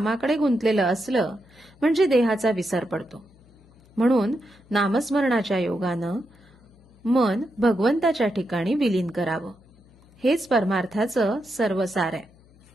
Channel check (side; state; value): left; noise; hum, 28 dB below the sound